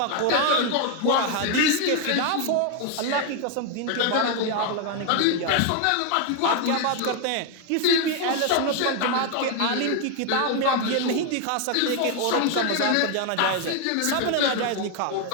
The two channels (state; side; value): different; both; correlation 0.01